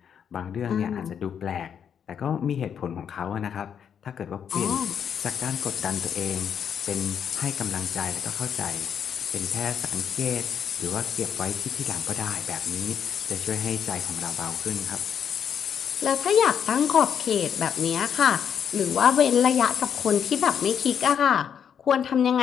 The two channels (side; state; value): right; quieter; 8.0 dB